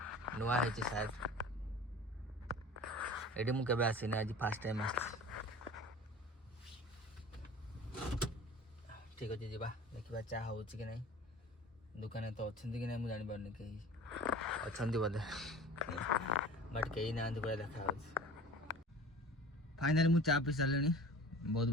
नुआ है शायद एडी मु केबे आसी ना आज फर्स्ट टाइम आसी। ठीक अच्छे जा देखा चा हो कि नहीं दुकान तो अच्छा कि नहीं मुझे जानी पारनी कहीं अच्छा बोधे बट कहीं ना पूरा देखा फाइनाली मुझे चा पी सारे बहुत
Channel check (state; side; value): normal; both; correlation 0.41